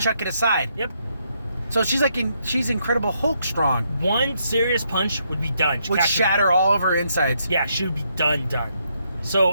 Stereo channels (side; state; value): both; inverted; correlation -0.76